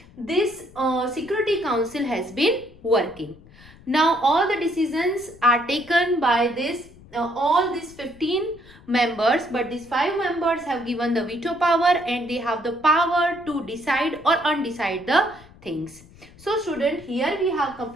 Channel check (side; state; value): left; noise; rumble, 23 dB below the sound